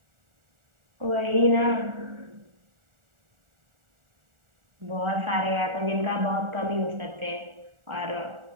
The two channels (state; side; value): late; left; 1.4 ms